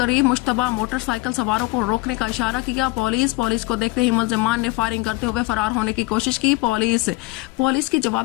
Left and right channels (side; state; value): right; quieter; 21.8 dB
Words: مشتبہ موٹر سائیکل سواروں کو روکنے کا اشارہ کیا۔ پولیس کو دیکھتے ہی ملزمان نے فائرنگ کرتے ہوئے فرار ہونے کی کوشش کی۔ پولیس کی